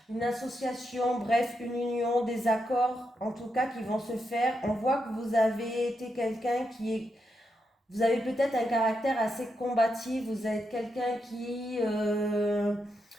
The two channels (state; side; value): normal; both; correlation 0.83